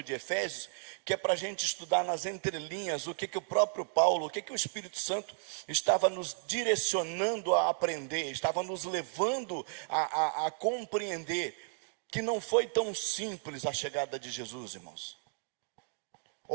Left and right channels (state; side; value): silent; left; 55 dB below the other